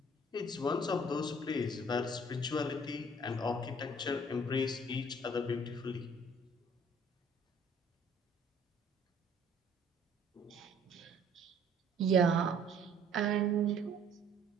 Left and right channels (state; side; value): normal; both; correlation 0.56